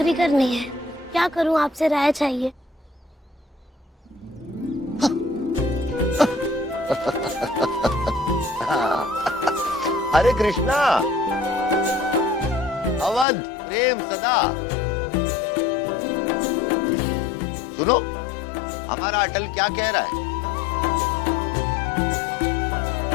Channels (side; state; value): right; drops out; at 13.2 s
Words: करनी है, क्या करूं? आपसे राय चाहिए। अरे कृष्णा, अवध प्रेम सदा। सुनो, हमारा अटल क्या कह रहा है?